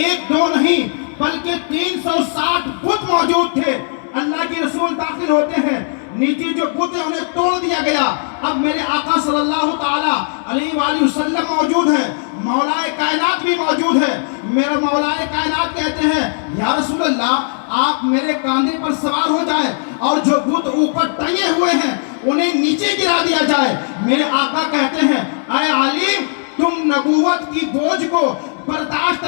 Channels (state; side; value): silent; right; digital silence